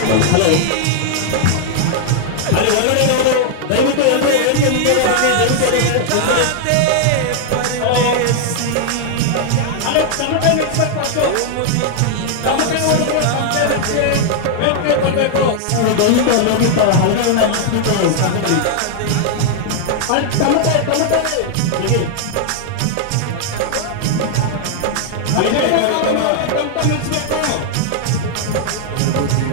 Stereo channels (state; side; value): different; both; correlation -0.01